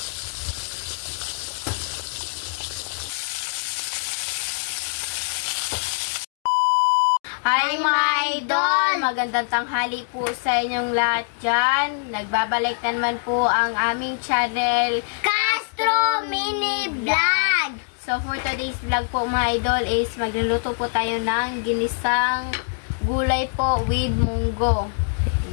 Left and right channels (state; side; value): silent; right; digital silence